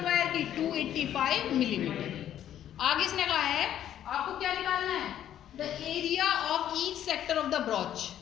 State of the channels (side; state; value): right; quieter; 11.0 dB